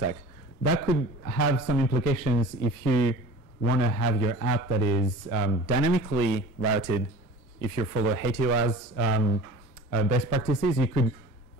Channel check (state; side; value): late; left; 1.0 ms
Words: That could have some implications if you want to have your app that is dynamically routed. If you follow HTOA's best practices, you could